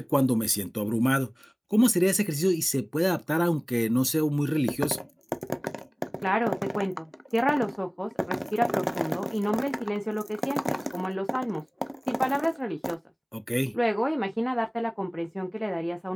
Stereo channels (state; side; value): identical; both; correlation 1.00